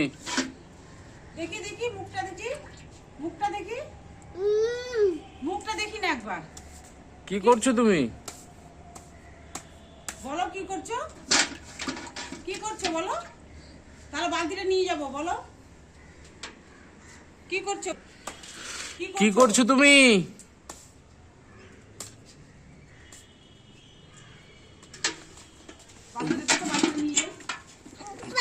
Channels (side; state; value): both; identical; correlation 1.00